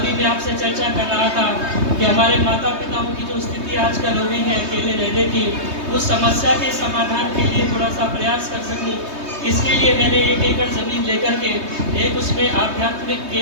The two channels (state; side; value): late; left; 3.2 ms